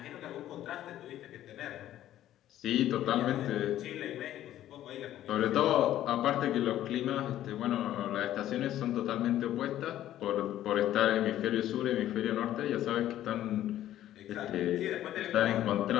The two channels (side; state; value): right; quieter; 12.7 dB